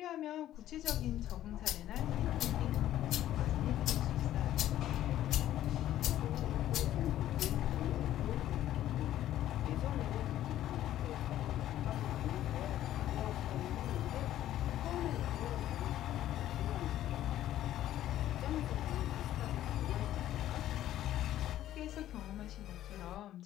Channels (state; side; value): quieter; right; 12.8 dB